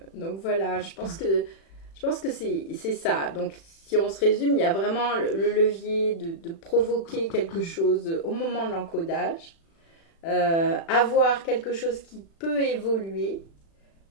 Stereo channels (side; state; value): right; late; 36 ms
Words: voilà, je pense que c'est ça. Donc si on se résume, il y a vraiment le levier de provoquer quelque chose au moment de l'encodage, avoir quelque chose qui peut évoluer,